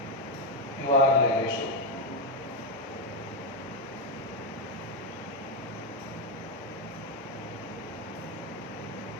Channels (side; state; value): both; normal; correlation 0.05